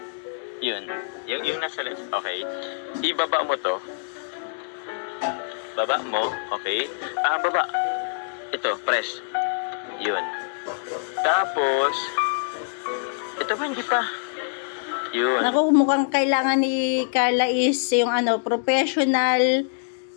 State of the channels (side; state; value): right; silent; digital silence